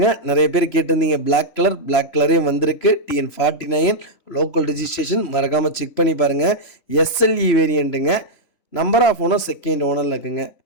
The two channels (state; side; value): late; right; 3.0 ms